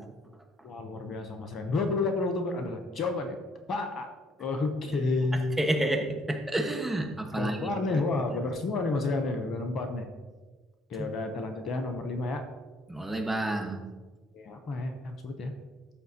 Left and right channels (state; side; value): normal; both; correlation 0.66